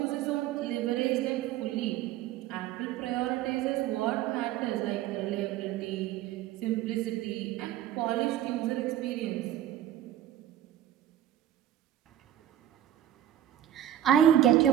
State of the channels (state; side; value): quieter; left; 11.8 dB